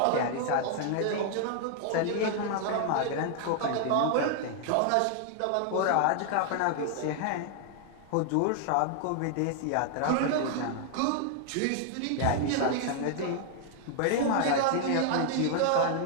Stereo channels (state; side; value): different; both; correlation 0.00